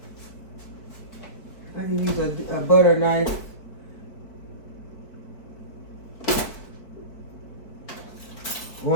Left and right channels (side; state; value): right; late; 4.6 ms